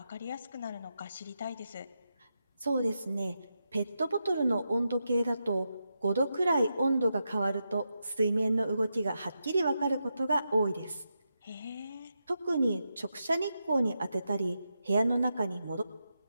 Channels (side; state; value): both; inverted; correlation -0.86